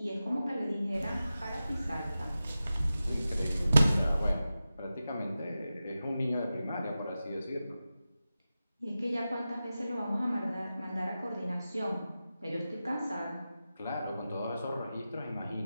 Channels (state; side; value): inverted; both; correlation -0.93